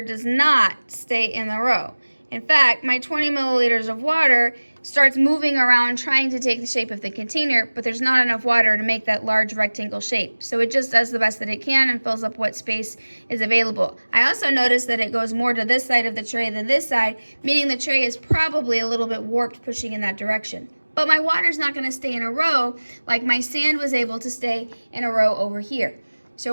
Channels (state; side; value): inverted; both; correlation -1.00